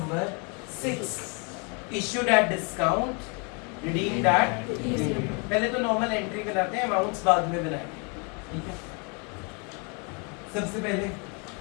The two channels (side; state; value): right; quieter; 34.3 dB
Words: 6, issued at discount, redeemed eight. पहले तो नॉर्मल एंट्री बनाते हैं, अमाउंट्स बाद में बनाएंगे, ठीक है। सबसे पहले